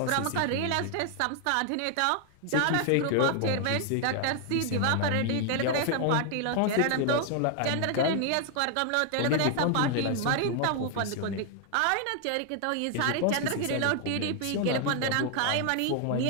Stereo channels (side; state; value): both; different; correlation 0.00